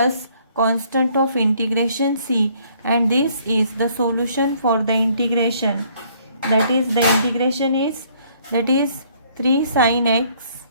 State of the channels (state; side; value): inverted; both; correlation -0.63